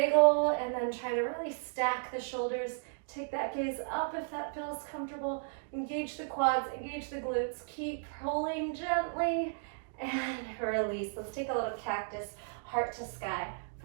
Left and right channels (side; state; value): left; silent; digital silence